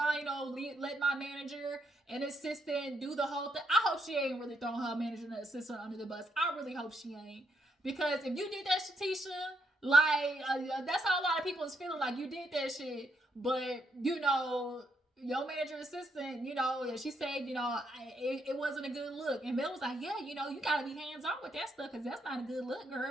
you know, let my manager and assistant do the whole thing. I hope she ain't really throwing her manager and assistant under the bus. I really hope she ain't. Because if you did that, Shatisha, like, that's how a lot of people is feeling, like you did that shit. But, you know, your manager assistant, you know, and she said, you know, it wasn't a good look. And Mel was like, yeah, you know, you gotta be hands on with that stuff because that's not a good look,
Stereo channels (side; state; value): both; normal; correlation 0.77